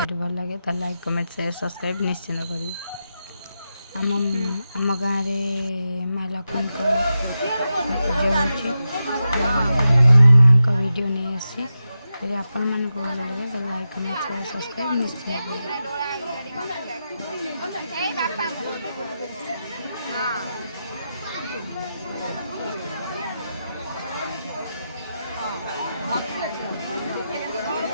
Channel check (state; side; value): inverted; both; correlation -0.90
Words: ଭଲ ଲାଗେ ତାହେଲେ ଲାଇକ୍ କମେଣ୍ଟ ସେୟାର ସବସ୍କ୍ରାଇବ୍ ନିଶ୍ଚିନ୍ତ କରିବେ। ଆମ ଗାଁରେ ମା ଲକ୍ଷ୍ମୀଙ୍କ ପୂଜା ହେଉଛି। ଆମ ମାଆଙ୍କ ଭିଡ଼ିଓ ନେଇ ଆସିଛି। ଯଦି ଆପଣମାନଙ୍କୁ ଭଲ ଲାଗେ ତାହେଲେ ଲାଇକ୍ କମେଣ୍ଟ ସେୟାର ସବସ୍କ୍ରାଇବ୍ ନିଶ୍ଚିନ୍ତ କରିବେ।